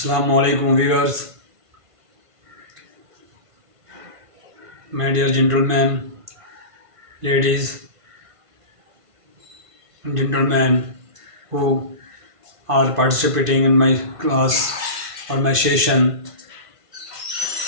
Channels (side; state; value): left; late; 1.5 ms